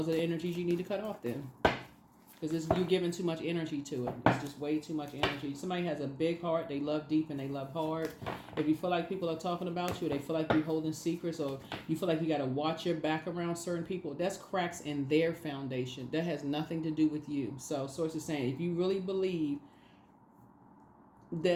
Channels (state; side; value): identical; both; correlation 1.00